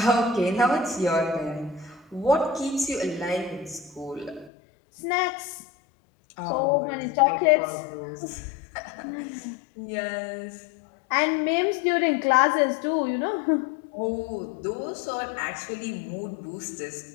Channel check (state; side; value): drops out; right; at 4.5 s